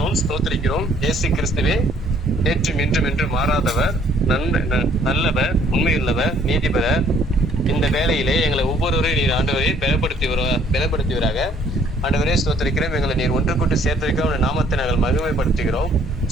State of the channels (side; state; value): both; normal; correlation 0.62